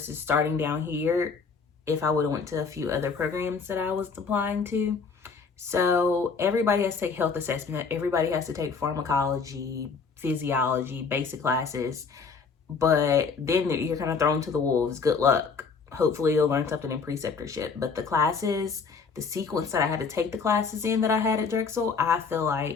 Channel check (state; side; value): quieter; right; 5.2 dB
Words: starting down here if I would have went to a few other programs that I was applying to. So everybody has to take health assessment. Everybody has to take pharmacology, physiology, basic classes. But then you're kind of thrown to the wolves. Good luck. Hopefully you'll learn something in preceptorship. But the classes, the sequence that I had to take the classes in that I had at Drexel, I feel